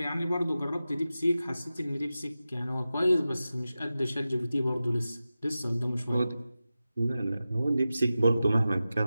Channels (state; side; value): inverted; both; correlation -0.94